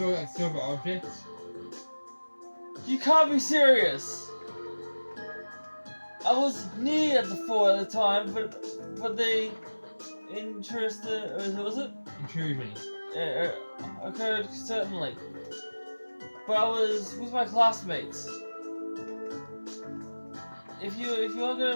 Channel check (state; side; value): inverted; both; correlation -1.00